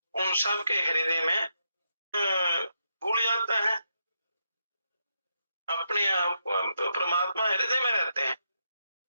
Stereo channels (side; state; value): both; inverted; correlation -0.81